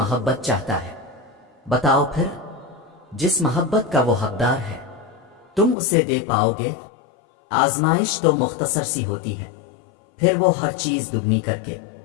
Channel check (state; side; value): drops out; right; at 5.8 s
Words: چاہتا ہے۔ بتاؤ پھر، جس محبت کا وہ حقدار ہے تم اسے دے پاؤ گے؟ آزمائش تو مختصر سی ہوتی ہے، پھر وہ ہر چیز دگنی کر کے